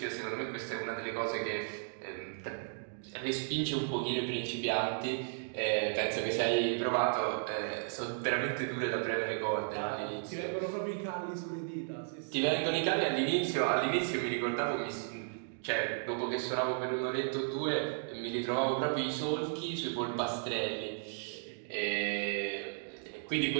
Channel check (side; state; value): left; silent; digital silence